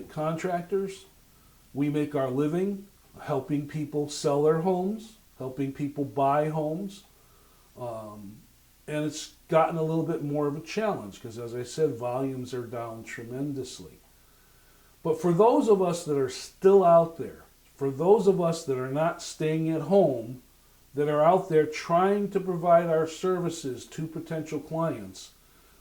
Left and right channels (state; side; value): identical; both; correlation 1.00